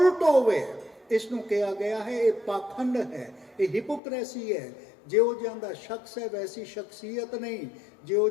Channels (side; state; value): right; drops out; at 4.0 s